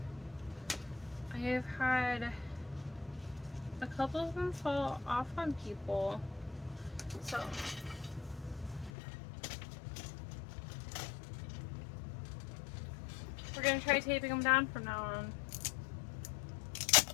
I have had a couple of them fall off on people, so we're going to try taping them down from now on.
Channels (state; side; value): drops out; right; at 8.9 s